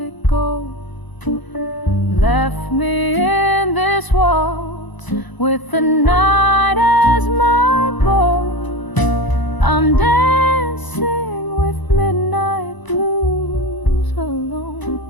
go? Left me in this waltz with the night as my bow. I'm dancing with midnight blues alone,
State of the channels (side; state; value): right; late; 1.0 ms